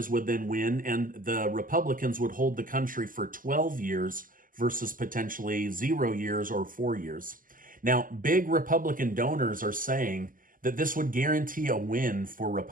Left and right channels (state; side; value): late; left; 0.40 ms